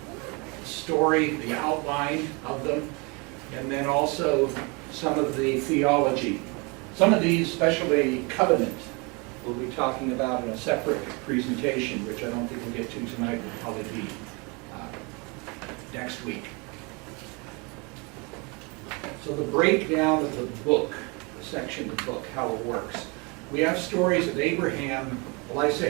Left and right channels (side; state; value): left; quieter; 29.8 dB